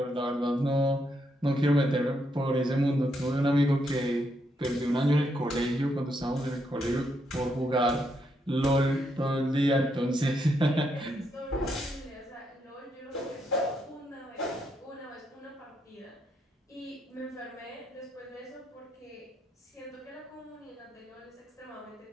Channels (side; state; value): both; normal; correlation 0.78